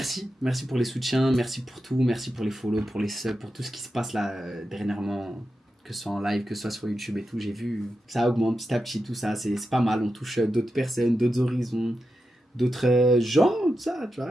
pour les soutiens, merci pour tout, merci pour les follow, pour les subs, pour tout ce qui se passe là dernièrement, que ce soit en live, que ce soit sur YouTube et tout. J'ai vu, ça augmente petit à petit, tout ça, c'est pas mal. On touche d'autres personnes, d'autres horizons, d'autres gens, tout ça, tu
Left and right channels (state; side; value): normal; both; correlation 0.89